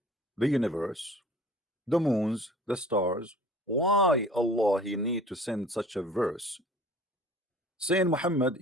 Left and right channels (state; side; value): normal; both; correlation 0.47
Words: the universe, the moons, the stars. Why Allah he need to send such a verse saying, Muhammad,